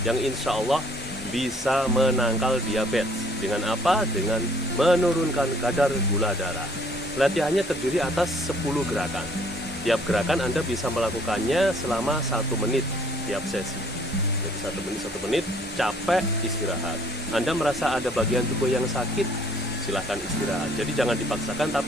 yang insya Allah bisa menangkal diabetes. Dengan apa? Dengan menurunkan kadar gula darah. Latihannya terdiri atas 10 gerakan. Tiap gerakan Anda bisa melakukannya selama 1 menit tiap sesi. Jadi 1 menit, capek, istirahat. Anda merasa ada bagian tubuh yang sakit, silahkan istirahat. Jadi jangan dipaksakan,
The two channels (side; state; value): both; normal; correlation 0.60